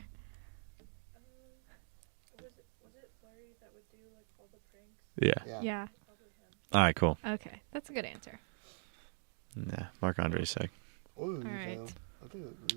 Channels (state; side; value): silent; left; digital silence